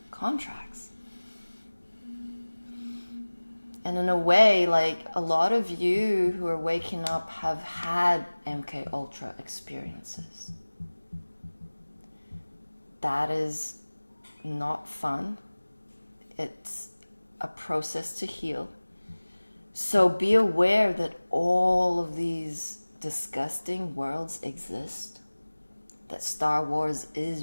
contracts. And in a way, like, a lot of you who are waking up have had MK Ultra experiences. that is not fun. It's a process to heal. So be aware that all of these disgusting worlds exist. That Star Wars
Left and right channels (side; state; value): both; inverted; correlation -1.00